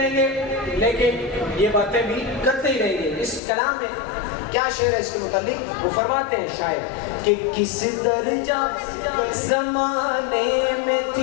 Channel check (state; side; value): drops out; right; at 3.4 s